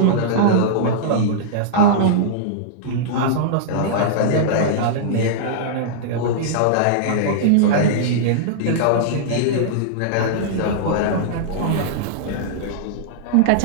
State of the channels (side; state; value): both; different; correlation -0.02